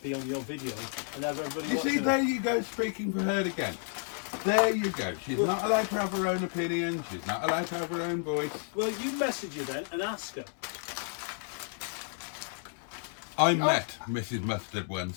on your video and have everybody You watching see, it. there you go, speaking for her again. There you go. She's not allowed to have her own opinion. She's not allowed to have her own voice. Well, you message her then and ask her. I met Mrs. Mustard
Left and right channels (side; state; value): right; silent; 57 dB below the other